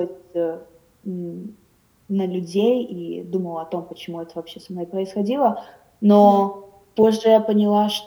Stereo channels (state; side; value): identical; both; correlation 1.00